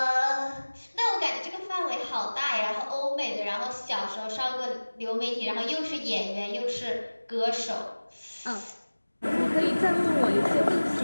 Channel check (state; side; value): inverted; both; correlation -1.00